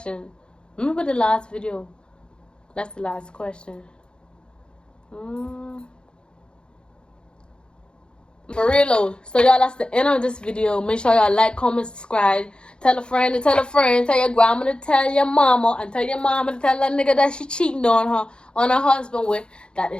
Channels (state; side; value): late; right; 0.052 ms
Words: Remember the last video? That's the last question. For real though. So y'all, that's the end of this video. Make sure y'all like, comment, subscribe. Tell a friend to tell a friend. Tell your grandma to tell your mama. And tell your mama to tell that nigga that she cheating on her husband with. That